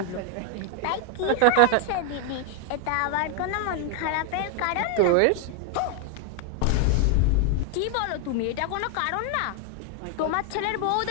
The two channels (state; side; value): different; both; correlation 0.01